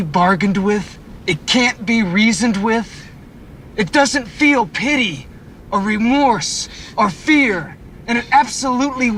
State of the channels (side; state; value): both; identical; correlation 1.00